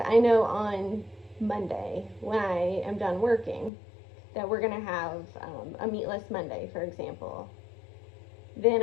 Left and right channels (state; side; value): drops out; right; at 3.7 s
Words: know on Monday, when I am done working, that we're going to have a meatless Monday, for example. Then